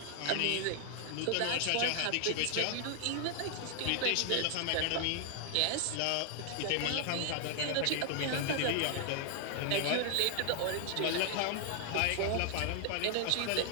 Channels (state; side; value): different; both; correlation 0.00